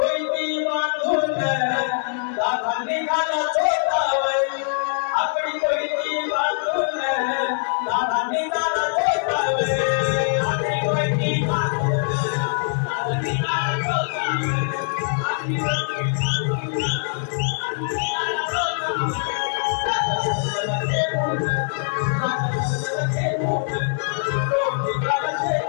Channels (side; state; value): right; silent; digital silence